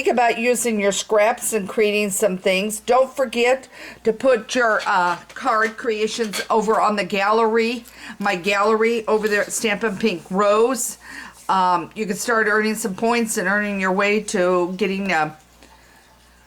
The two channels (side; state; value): both; identical; correlation 1.00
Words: about using your scraps and creating some things. Don't forget to put your card creations over on the gallery, my gallery over there at Stampin' Pink Rose. You can start earning some points and earning your way to getting